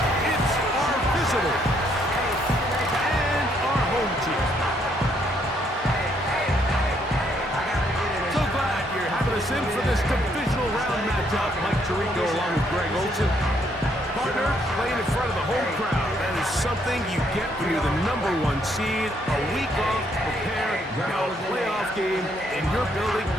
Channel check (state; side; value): normal; both; correlation 0.71